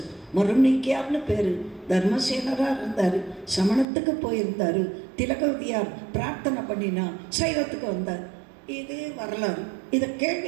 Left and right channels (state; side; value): drops out; left; at 3.9 s